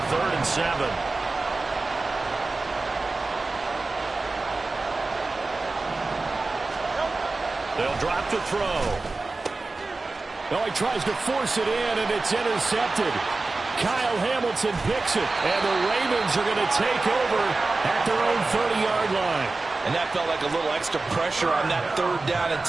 3rd and 7. They'll drop the throw. Oh, he tries to force it in, and it's intercepted. Kyle Hamilton picks it, and the Ravens are going to take over at their own 30-yard line. And that felt like a little extra pressure on that 3rd down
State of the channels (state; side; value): quieter; left; 3.5 dB